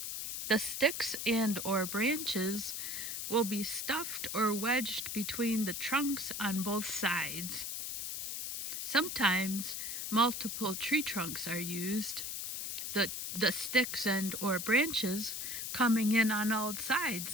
the sticks and or branches will be stuffed or wedged between the trunks on both sides. Sometimes multiple tree trunks are used, the sticks and or branches coming in on all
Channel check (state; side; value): noise; left; hiss, 4 dB below the sound